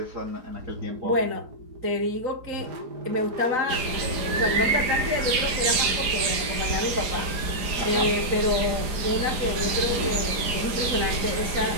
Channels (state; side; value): late; left; 4.8 ms